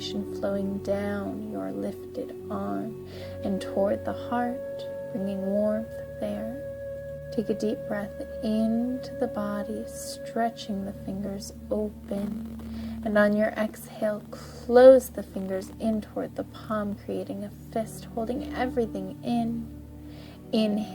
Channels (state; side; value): identical; both; correlation 1.00